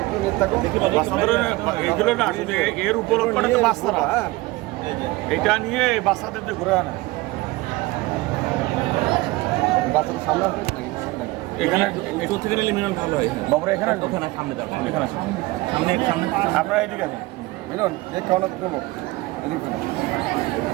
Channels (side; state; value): left; quieter; 20.7 dB